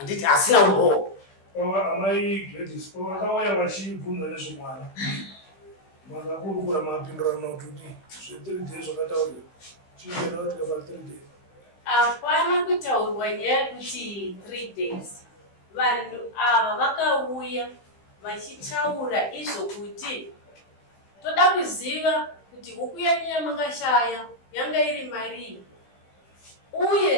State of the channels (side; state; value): right; late; 15 ms